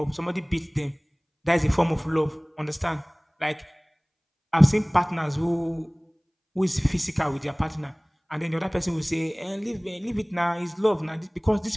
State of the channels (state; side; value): identical; both; correlation 1.00